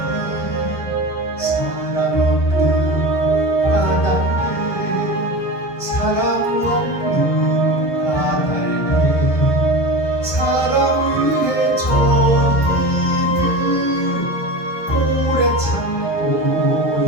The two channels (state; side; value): late; right; 1.2 ms